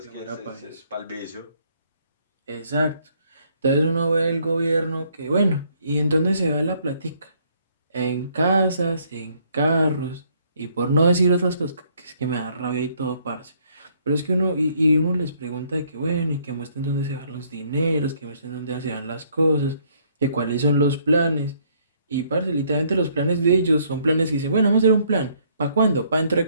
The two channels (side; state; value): both; inverted; correlation -0.66